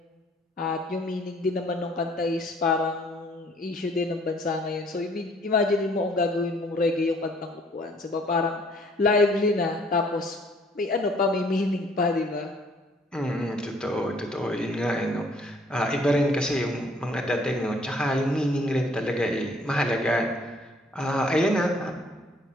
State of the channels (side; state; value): both; normal; correlation 0.60